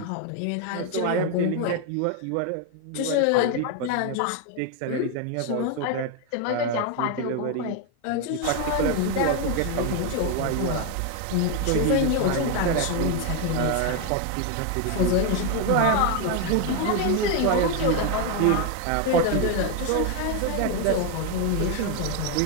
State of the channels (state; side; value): different; both; correlation 0.01